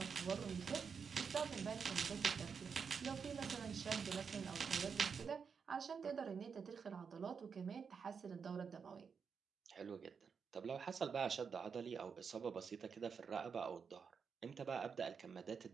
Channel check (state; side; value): quieter; left; 6.1 dB